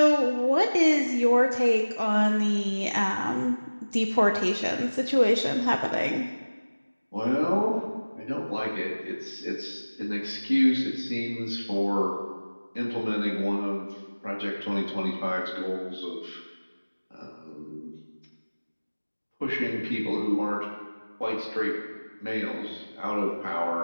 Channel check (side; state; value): both; inverted; correlation -1.00